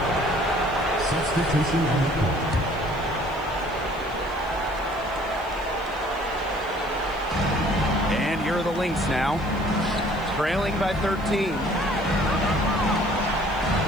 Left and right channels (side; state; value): left; noise; hiss, 26 dB below the sound